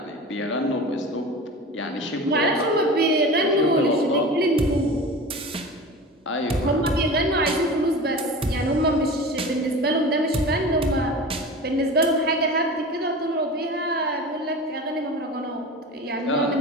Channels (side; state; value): both; normal; correlation 0.33